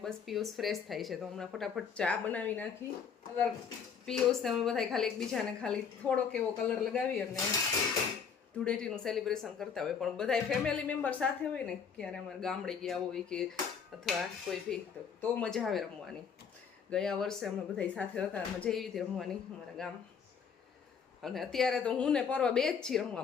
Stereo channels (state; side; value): quieter; right; 6.6 dB